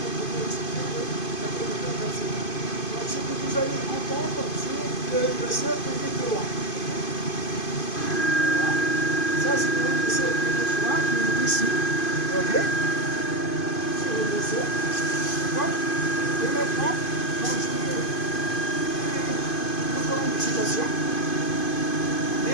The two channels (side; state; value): right; late; 2.5 ms